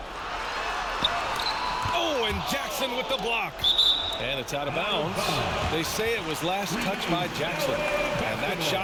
Oh, and Jackson with the block. And it's out of bounds. They say it was last touched by Jackson. And that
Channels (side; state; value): both; identical; correlation 1.00